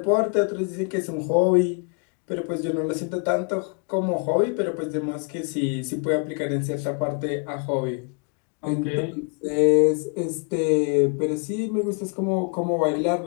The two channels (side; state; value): right; quieter; 37.4 dB